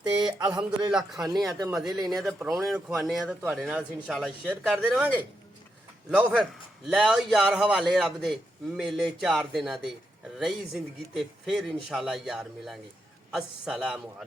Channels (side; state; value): both; normal; correlation 0.83